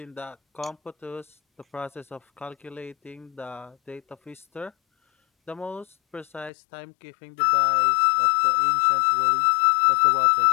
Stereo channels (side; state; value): right; drops out; at 6.5 s